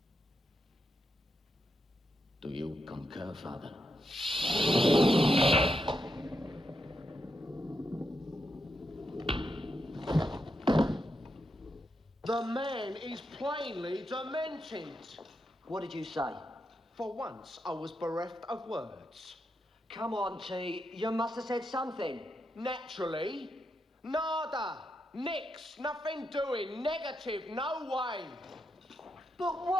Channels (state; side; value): normal; both; correlation 0.84